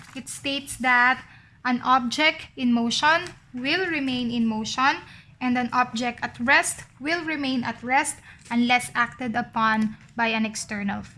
It states that an object in motion will remain in motion, and an object at rest will remain at rest unless acted upon by an external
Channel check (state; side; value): identical; both; correlation 1.00